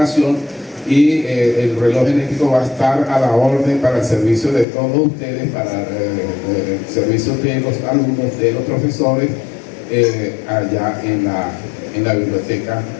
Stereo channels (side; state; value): right; drops out; at 4.7 s